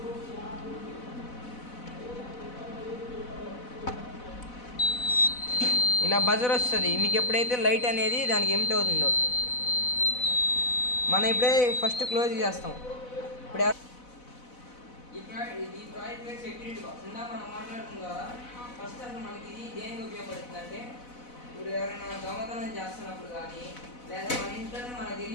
ఇలా బజర్ వస్తుంది. మీకు ఎప్పుడైతే లైట్ అనేది దానికి ఎమిట్ అవుతుందో మనం ఇప్పుడే ఫస్ట్ క్లోజ్ చేస్తాం. ఇప్పుడు ఈ ప్రాజెక్ట్ పేరు సెక్యూరిటీ బాక్స్. ఇందాక మనం మాట్లాడుతున్న ద్వారా ఫస్ట్ అసలు మనకి ఇది దేనికి ఉపయోగపడుతుంది అంటే, ఇప్పుడు ఎవరైనా దొంగతనం చేస్తున్నప్పుడు కానీ, లేదా మన ఇంట్లోనే మనకు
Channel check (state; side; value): late; right; 4.0 ms